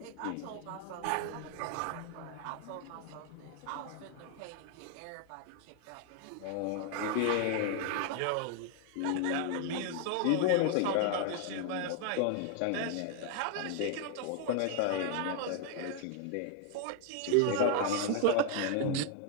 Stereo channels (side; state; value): both; different; correlation 0.00